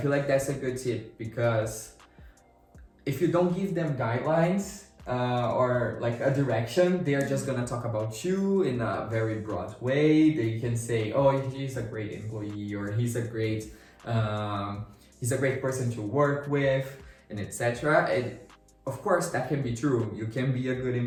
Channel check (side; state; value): both; identical; correlation 1.00